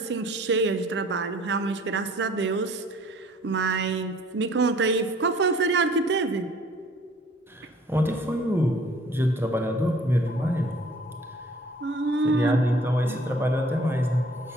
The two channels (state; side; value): normal; both; correlation 0.55